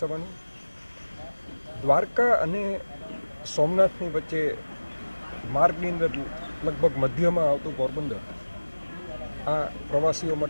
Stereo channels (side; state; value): both; inverted; correlation -1.00